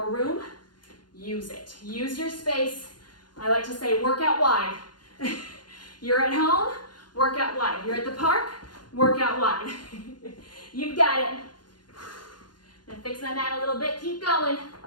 room, use it. Use your space. I like to say work out wide. You're at home, work out wide. You're at the park, work out wide. You've got it. Gonna fix my mat a little bit, keep going.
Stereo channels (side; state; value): right; late; 0.71 ms